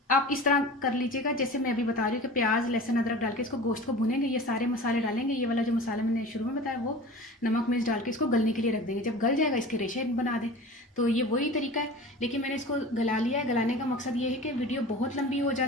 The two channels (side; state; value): both; normal; correlation 0.37